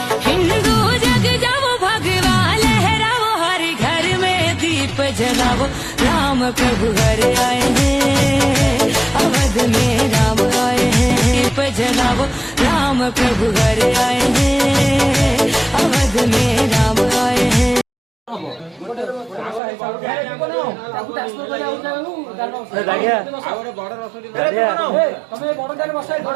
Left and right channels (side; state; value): left; drops out; at 19.6 s